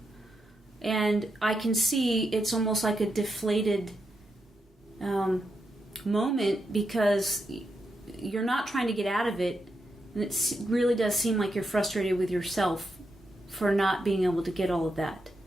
And I can see it's almost like a deflated moment because you're not trying to get out of it. And it really does seem like you're frustrated with yourself for not being able to get all of that.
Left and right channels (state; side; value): normal; both; correlation 0.84